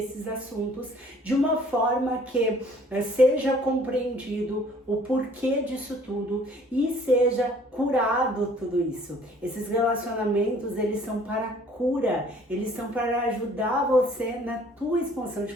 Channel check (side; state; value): both; normal; correlation 0.56